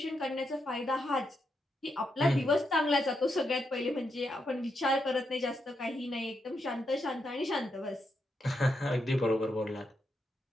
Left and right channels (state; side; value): normal; both; correlation 0.83